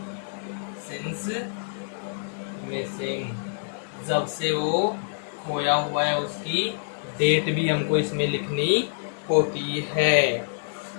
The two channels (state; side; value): silent; right; 61 dB below the other